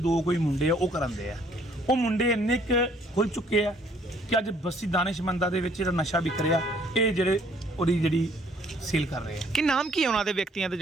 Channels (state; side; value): normal; both; correlation 0.62